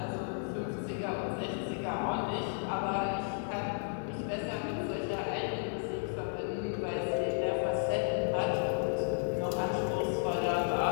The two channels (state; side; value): silent; right; digital silence